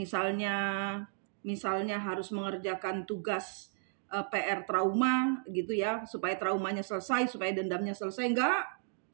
harus mengerjakan tugas PR trauma gitu ya, supaya traumanya selesai, supaya dendamnya selesai. Enggak,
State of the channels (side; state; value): left; silent; digital silence